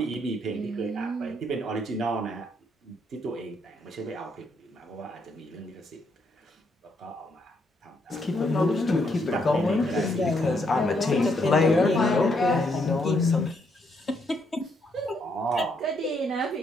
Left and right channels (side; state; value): both; normal; correlation 0.74